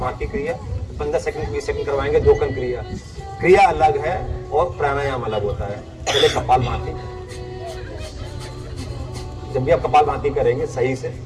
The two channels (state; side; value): identical; both; correlation 1.00